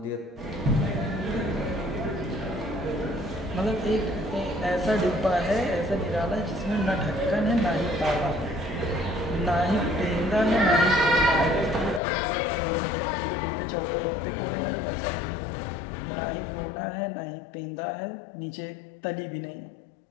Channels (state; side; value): drops out; right; at 12.0 s